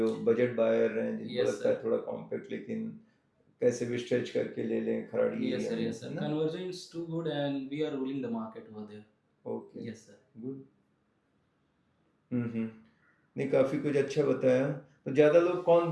बजट बायर हैं, जिनको Yes, लगता है sir. थोड़ा कॉम्पैक्ट लेकिन कैसे भी स्ट्रेच करके ले लें खराड़ी Yes, एरिया sir. में, Yes, sir. है ना? Conversion is too good, and we are ruling the market over there. Okay, Yes, sir. Good. नहीं काफ़ी कुछ अच्छा बताया। तो ज़्यादा लोग कौन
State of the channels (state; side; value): identical; both; correlation 1.00